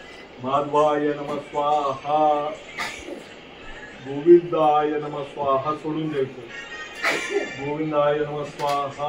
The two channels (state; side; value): identical; both; correlation 1.00